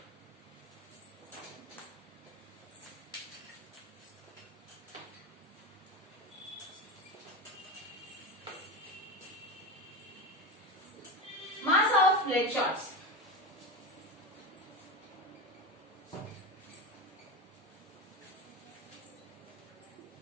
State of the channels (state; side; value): normal; both; correlation 0.21